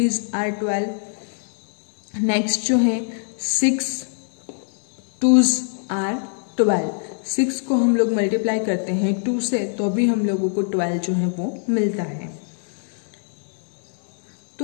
आर 12। नेक्स्ट जो है 6 2s आर 12। 6 को हम लोग मल्टीप्लाई करते हैं 2 से तो भी हम लोगों को 12 जो है वो मिलता है।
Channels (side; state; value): right; silent; digital silence